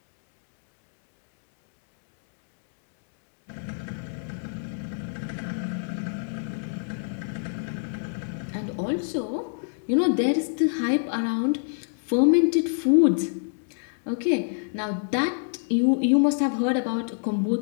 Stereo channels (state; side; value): silent; right; digital silence